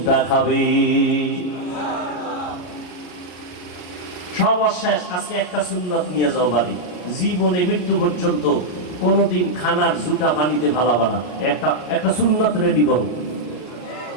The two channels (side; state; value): right; late; 33 ms